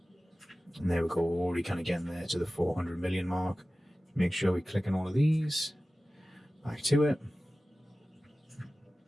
And there we go, already kind of getting there to the 400 million mark. Make sure we click on all of these, back to it.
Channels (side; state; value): both; normal; correlation 0.96